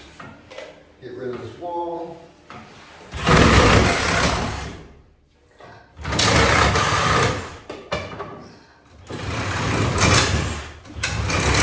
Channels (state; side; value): identical; both; correlation 1.00